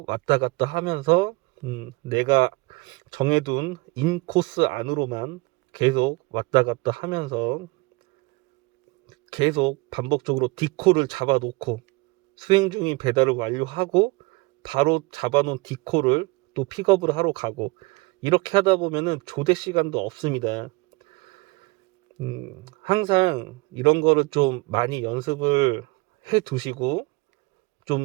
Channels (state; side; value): quieter; left; 24.6 dB